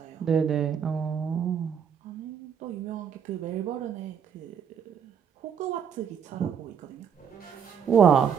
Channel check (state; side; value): quieter; left; 7.5 dB